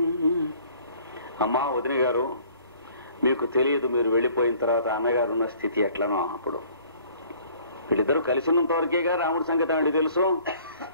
అమ్మా వదిన గారు, మీకు తెలియదు, మీరు వెళ్ళిపోయిన తర్వాత అన్నగారు ఉన్న స్థితి ఎట్లనో. అప్పుడు వీళ్ళిద్దరూ కలిసినంత వరకేగా రాముడి సంగతి ఆవిడ తెలుసు.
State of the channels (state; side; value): inverted; both; correlation -0.55